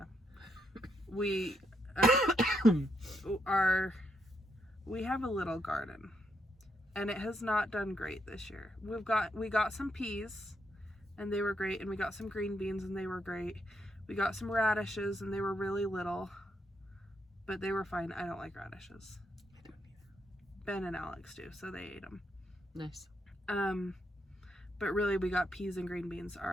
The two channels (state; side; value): normal; both; correlation 0.78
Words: We have a little garden, and it has not done great this year. We got some peas, and they were great, and we got some green beans, and they were great. We got some radishes, and they were really little, but they were fine. I don't like radishes. Ben and Alex do, so they ate them. Nice. But really, we got peas and green beans.